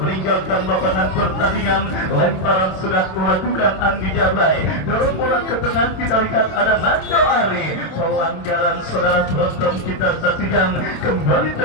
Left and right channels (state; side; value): late; right; 27 ms